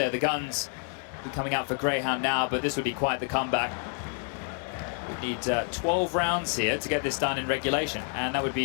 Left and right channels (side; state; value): right; quieter; 37.7 dB